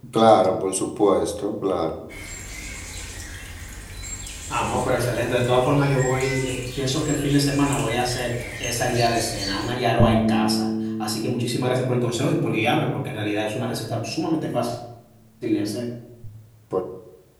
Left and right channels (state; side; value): identical; both; correlation 1.00